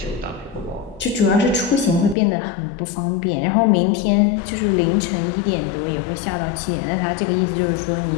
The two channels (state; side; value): drops out; right; at 2.1 s